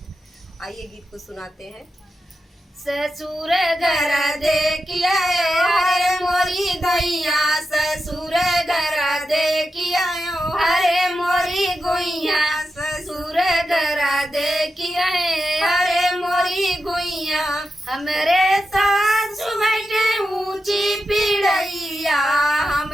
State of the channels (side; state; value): both; normal; correlation 0.89